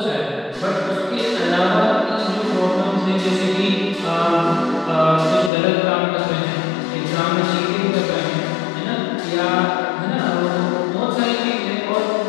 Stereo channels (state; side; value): drops out; right; at 5.5 s